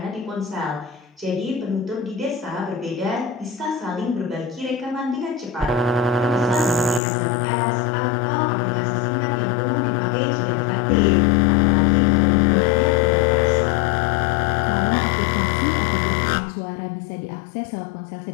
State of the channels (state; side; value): drops out; right; at 7.0 s